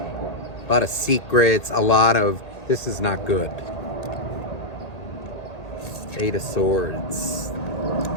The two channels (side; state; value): right; late; 1.8 ms